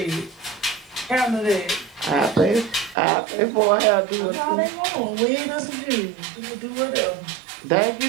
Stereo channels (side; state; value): left; drops out; at 3.0 s